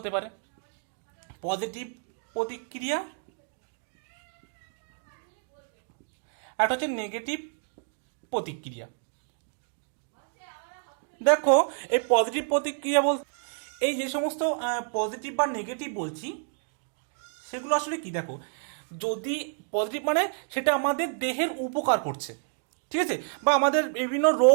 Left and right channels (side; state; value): left; silent; 58 dB below the other